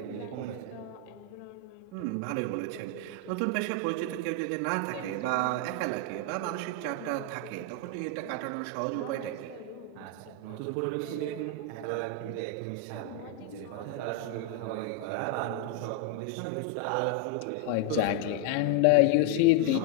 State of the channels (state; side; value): different; both; correlation 0.01